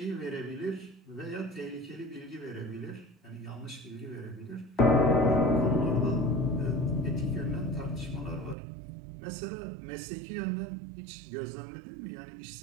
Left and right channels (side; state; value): left; drops out; at 8.6 s